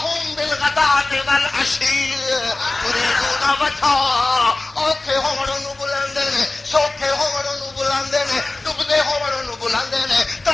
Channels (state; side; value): quieter; right; 3.1 dB